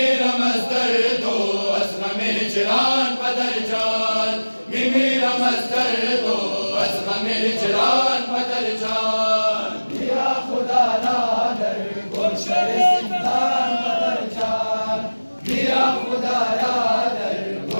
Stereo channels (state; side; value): inverted; both; correlation -1.00